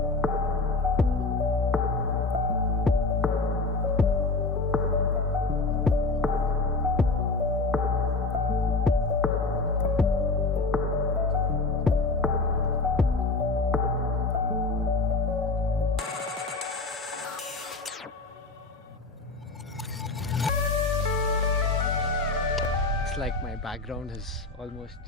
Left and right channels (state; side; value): quieter; right; 3.5 dB